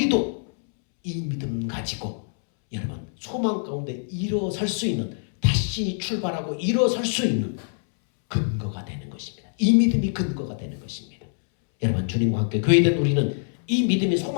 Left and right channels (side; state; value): right; silent; 62 dB below the other